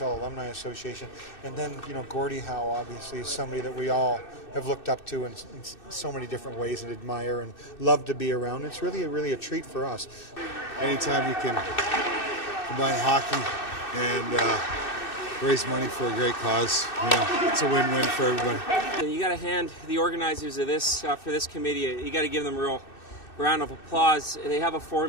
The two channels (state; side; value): late; right; 2.6 ms